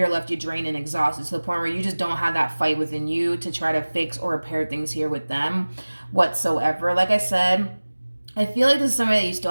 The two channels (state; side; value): inverted; both; correlation -1.00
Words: left you drained and exhausted, to the point where you just don't have that fight within you to try to fix or repair things here with them whatsoever. Like I said, I feel like this is somebody that you still